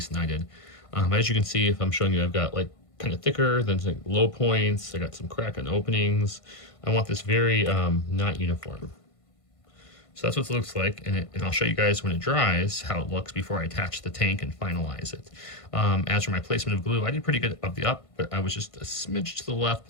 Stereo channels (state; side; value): late; right; 1.5 ms